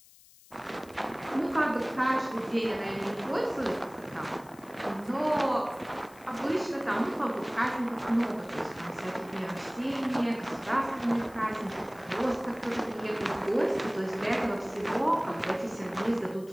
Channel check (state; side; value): noise; left; hiss, 24 dB below the sound